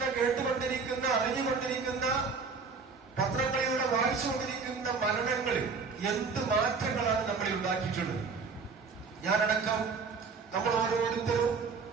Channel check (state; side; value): quieter; left; 4.9 dB